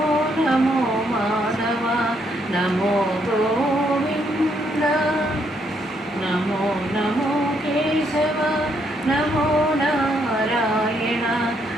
నమో మాధవ, నమో గోవింద, నమో నమో కేశవ, నమో నారాయణ,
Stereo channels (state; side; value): normal; both; correlation 0.74